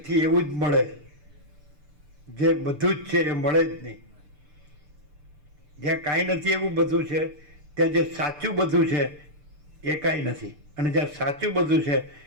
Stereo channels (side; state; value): left; late; 6.7 ms